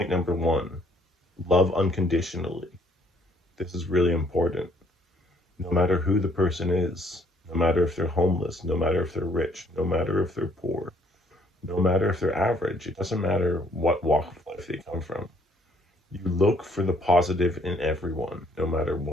number one, love unconditionally. This is really important. No matter who the person is, no matter if they're homeless, no matter if they're rich, no matter if they're poor, no matter if they're average, it doesn't matter what walk of life they come from. You look for the positive in everyone, no matter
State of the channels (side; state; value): both; normal; correlation 0.65